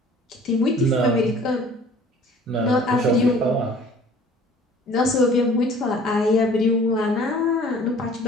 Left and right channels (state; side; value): normal; both; correlation 0.50